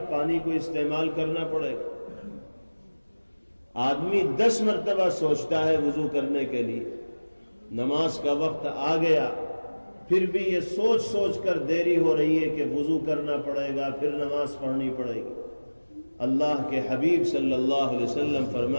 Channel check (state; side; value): inverted; both; correlation -1.00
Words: پانی کو استعمال کرنا پڑے گا۔ آدمی 10 مرتبہ سوچتا ہے وضو کرنے کے لیے، نماز کا وقت آ گیا پھر بھی یہ سوچ سوچ کر دیری ہو رہی ہے کہ وضو کرنا پڑے گا، پھر نماز پڑھنی پڑے گی۔ اللہ کے حبیب صلی اللہ علیہ وسلم